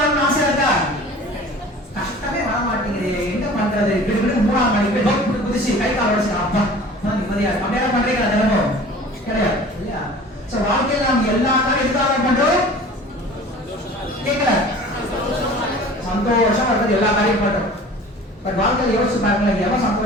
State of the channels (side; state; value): both; normal; correlation 0.43